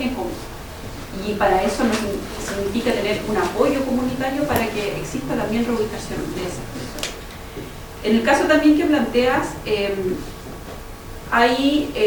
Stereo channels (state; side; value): identical; both; correlation 1.00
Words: común. Y para eso significa tener un apoyo comunitario para que exista también reubicación de esas personas. En el caso también que planteas, hay